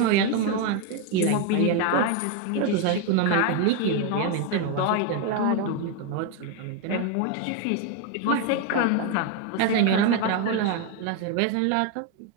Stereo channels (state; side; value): different; both; correlation 0.01